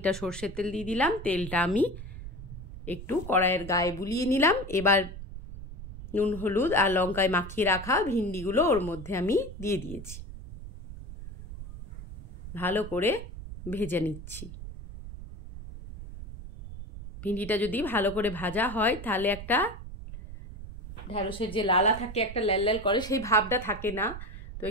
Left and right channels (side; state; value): right; noise; rumble, 11 dB below the sound